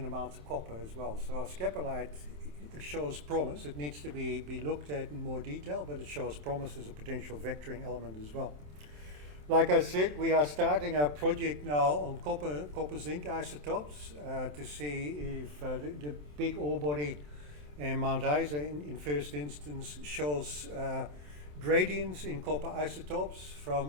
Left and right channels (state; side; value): late; left; 27 ms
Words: amounts of copper as well. So scapolite shows promise. It needs to be looked at in more detail, but it shows promise as a potential vectoring element as well. Like I said, we are starting a project now on copper zinc isotopes to see if the big ore body in Mount Isa in first instance shows gradients in copper isotopes